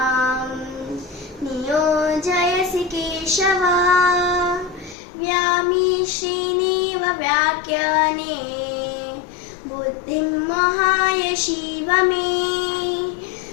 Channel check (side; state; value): right; drops out; at 5.0 s